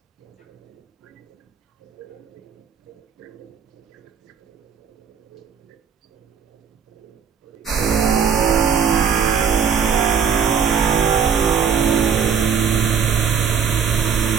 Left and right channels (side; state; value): left; quieter; 6.9 dB